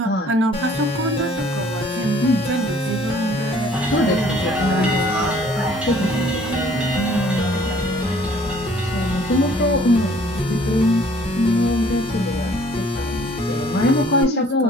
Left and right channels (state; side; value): normal; both; correlation 0.57